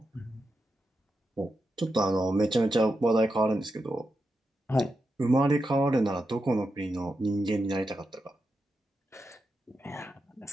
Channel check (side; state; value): both; normal; correlation 0.87